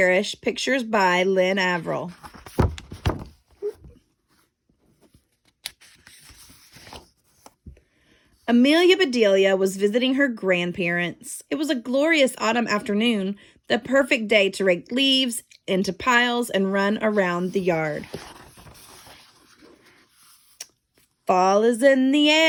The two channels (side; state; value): both; identical; correlation 1.00